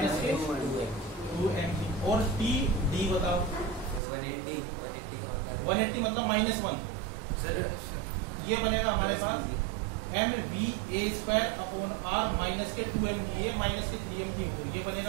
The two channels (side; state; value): left; drops out; at 4.0 s